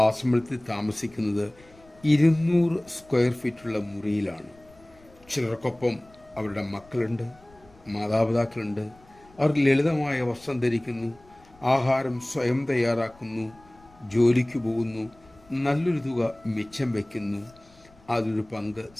ആശ്രമത്തിൽ താമസിക്കുന്നത് 200 സ്ക്വയർ ഫീറ്റുള്ള മുറിയിലാണ്. ചിലർക്കൊപ്പം അവരുടെ മക്കളുണ്ട്, മാതാപിതാക്കളുണ്ട്. അവർ ലളിതമായ വസ്ത്രം ധരിക്കുന്നു, ആഹാരം സ്വയം തയ്യാറാക്കുന്നു, ജോലിക്ക് പോകുന്നു, നല്ലൊരു തുക മിച്ചം വയ്ക്കുന്നു, അതൊരു പങ്ക്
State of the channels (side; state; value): left; noise; rumble, 27 dB below the sound